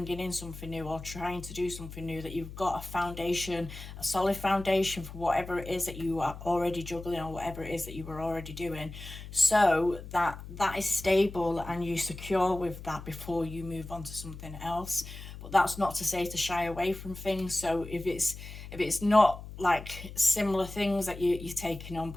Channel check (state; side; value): noise; left; hum, 12 dB below the sound